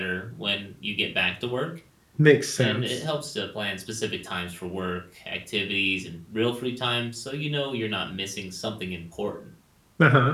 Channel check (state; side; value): identical; both; correlation 1.00